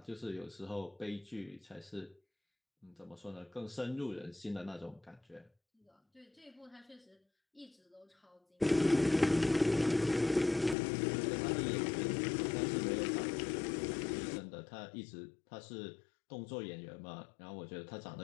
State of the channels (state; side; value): drops out; right; at 10.8 s